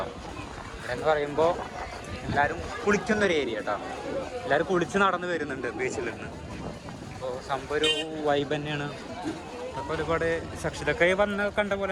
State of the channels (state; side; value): identical; both; correlation 1.00